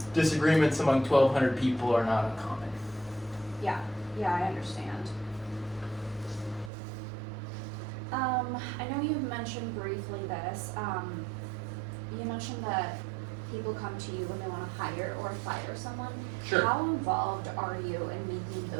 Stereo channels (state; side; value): drops out; left; at 6.7 s